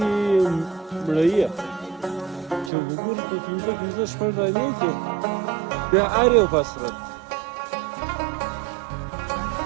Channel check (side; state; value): left; drops out; at 2.7 s